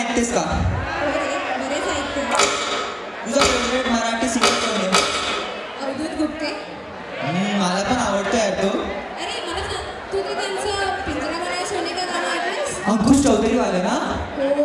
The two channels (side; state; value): both; identical; correlation 1.00